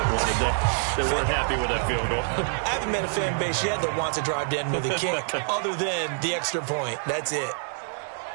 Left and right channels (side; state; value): left; silent; 61 dB below the other